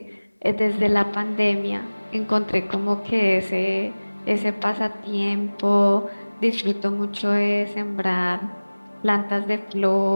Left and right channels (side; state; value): both; inverted; correlation -1.00